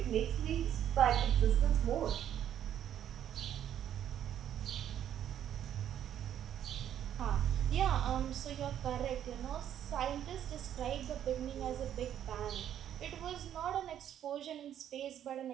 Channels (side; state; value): left; quieter; 10.4 dB